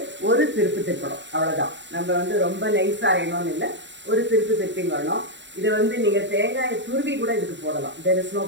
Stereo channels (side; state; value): left; late; 0.53 ms